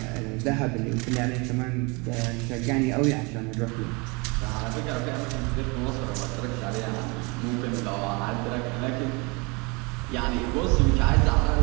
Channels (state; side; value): quieter; left; 28.7 dB